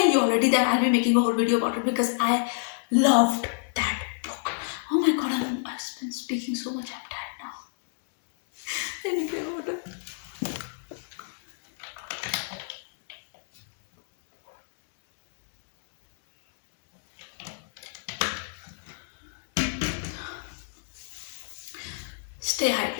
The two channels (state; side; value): silent; right; digital silence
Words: you already that I'll be making a whole video about it, because I loved that book. Oh my god, I've been speaking so much. I'm tired now. I need my water. Stay